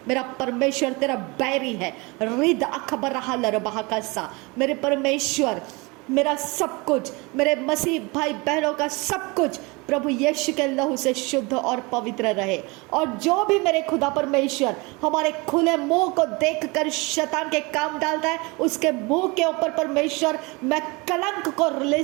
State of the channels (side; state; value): left; quieter; 26.4 dB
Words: मेरा परमेश्वर तेरा बैरी है। रिद अखबर हलर बहाकसा, मेरे परमेश्वर, मेरा सब कुछ, मेरे मसीह भाई बहनों का सब कुछ प्रभु यीशु के लहू से शुद्ध और पवित्र रहे। और जो भी मेरे खुदा परमेश्वर हमारे खुले मुंह को देखकर शैतान के काम डालता है, उसके मुंह के ऊपर परमेश्वर मैं कलंक को